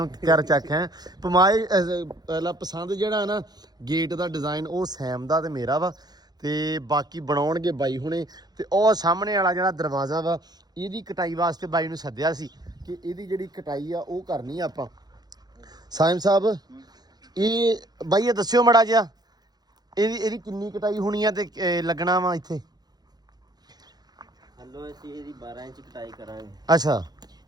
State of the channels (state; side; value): late; left; 0.19 ms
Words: ਕਰ ਚੱਕ ਹੈ ਪਮਾਈ। ਪਹਿਲਾ ਪਸੰਦ ਜਿਹੜਾ ਨਾ ਗੇਟ ਦਾ ਡਿਜ਼ਾਈਨ ਉਹ ਸੈਮ ਦਾ ਤੇ ਮੇਰਾ ਵਾ, ਤੇ ਬਾਕੀ ਬਣਾਉਣਗੇ ਬਾਈ ਹੁਣੇ। ਤੇ ਉਹ ਸਾਹਮਣੇ ਵਾਲਾ ਜਿਹੜਾ ਦਰਵਾਜ਼ਾ ਵਾ ਇਹਦੀ ਕਟਾਈ ਵਾਸਤੇ ਬਾਈ ਨੂੰ ਸੱਦਿਆ ਸੀ ਕਿ ਇਹਦੀ ਜਿਹੜੀ ਕਟਾਈ ਆ ਉਹ ਕਰਨੀ ਆ ਆਪਾਂ। ਸਾਇਮ ਸਾਹਿਬ ਇਹ ਬਾਈ ਇਹ ਦੱਸਿਓ ਮੜਾ ਜਿਹਾ ਇਹਦੀ ਕਿੰਨੀ ਕਟਾਈ ਹੋਣੀ ਆ ਤੇ ਲੱਗਣਾ ਵਾ ਇੱਥੇ? ਹਲੋ ਅਸੀਂ ਇਹਦੀ 12 ਇੰਚ ਕਟਾਈ ਕਰਾਂਗੇ। ਅੱਛਾ